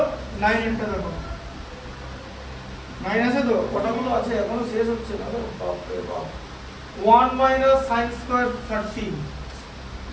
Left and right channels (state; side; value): identical; both; correlation 1.00